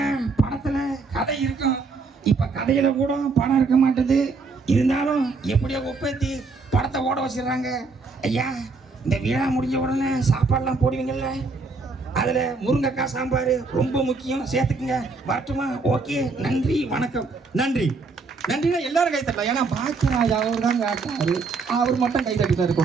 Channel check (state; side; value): quieter; left; 4.2 dB